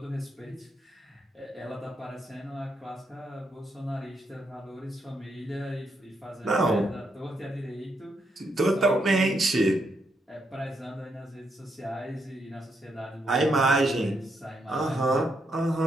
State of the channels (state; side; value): normal; both; correlation 0.79